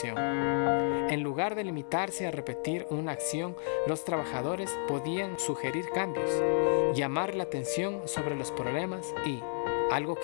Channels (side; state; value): right; silent; 57 dB below the other